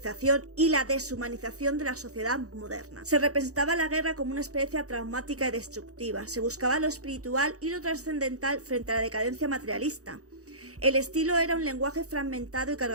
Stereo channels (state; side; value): late; left; 0.66 ms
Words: y la deshumanización de la sociedad moderna. Se representaba la guerra como una experiencia traumática y destructiva, se buscaba lo espiritual y lo trascendental frente a la decadencia materialista. El estilo era un lenguaje fragmentado y